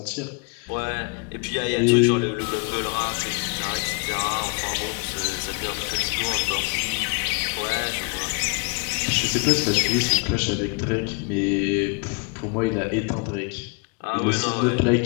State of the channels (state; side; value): quieter; right; 35.5 dB